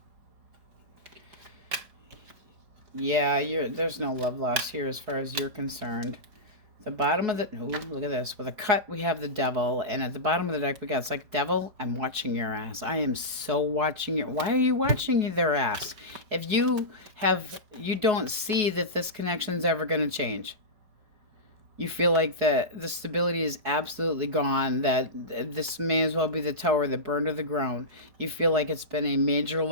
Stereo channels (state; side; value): late; left; 4.7 ms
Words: Yeah, there's no love lost here as far as you're concerned. The bottom of the... Ooh, look at this. With a cut, we have the Devil. And at the bottom of the deck, we got... It's like, Devil, I'm watching your ass. I am so watching your... Why are you watching their ass? If you don't see that this connection's ever going to change. You feel like the stability is absolutely gone. That this may as well be the tower that burned to the ground. You feel like it's been a major